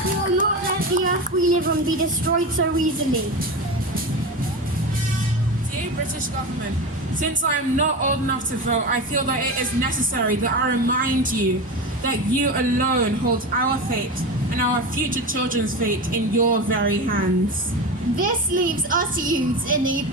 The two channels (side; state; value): both; normal; correlation 0.24